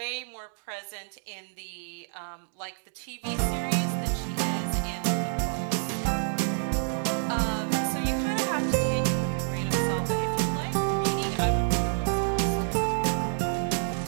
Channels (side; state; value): left; silent; digital silence